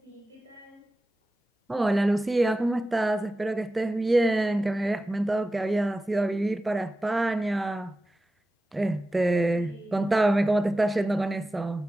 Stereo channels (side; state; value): both; normal; correlation 0.95